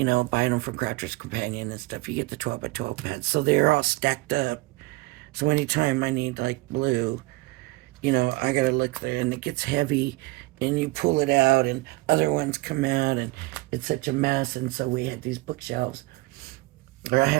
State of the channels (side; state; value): left; quieter; 22.3 dB